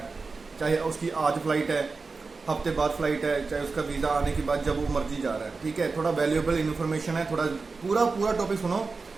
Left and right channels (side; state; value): left; quieter; 4.2 dB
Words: चाहे उसकी आज फ्लाइट है, हफ्ते बाद फ्लाइट है, चाहे उसका वीज़ा आने के बाद जब वो मर्जी जा रहा है, ठीक है। थोड़ा वैल्यूएबल इन्फॉर्मेशन है, थोड़ा पूरा टॉपिक सुनो,